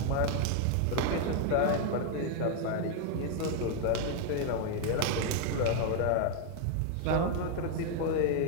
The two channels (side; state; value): both; different; correlation 0.00